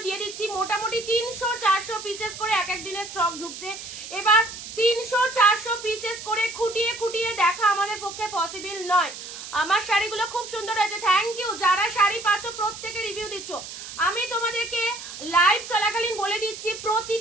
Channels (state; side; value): noise; right; hiss, 11 dB below the sound